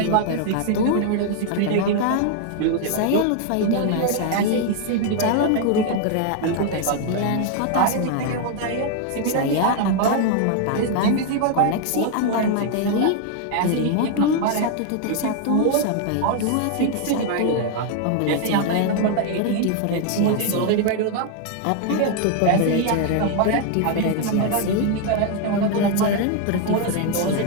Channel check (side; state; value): both; different; correlation 0.00